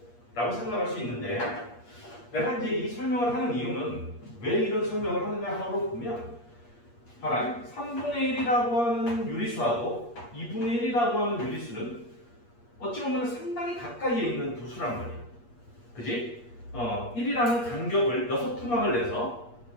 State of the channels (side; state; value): right; late; 8.4 ms